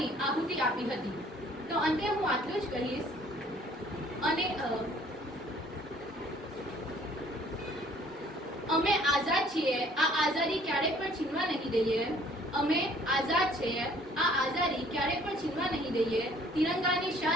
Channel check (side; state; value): both; normal; correlation 0.57